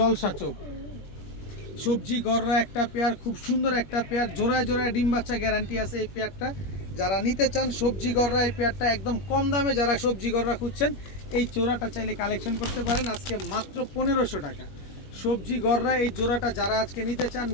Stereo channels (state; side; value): late; right; 21 ms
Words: চোখ। সবজি গররা একটা পেয়ার, খুব সুন্দর একটা পেয়ার, জোড়ায় জোড়ায় ডিম বাচ্চা গ্যারান্টি আছে এই পেয়ারটা। যারা নিতে চান সবজি গররা এই পেয়ারটা একদম কম দামে, যারা সবজি গররা খুঁজছেন এই জোড়াটা চাইলে কালেকশন করতে পারেন আজকে মাত্র 1500 টাকা। সবজি গররা এই জোড়াটা যারা আজকে নিতে চান